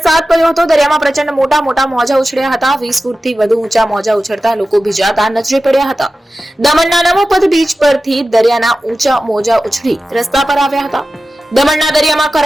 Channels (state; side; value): normal; both; correlation 0.94